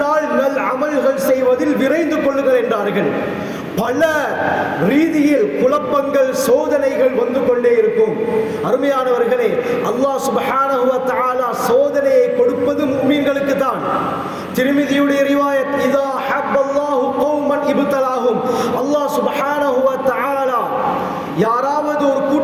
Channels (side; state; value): both; identical; correlation 1.00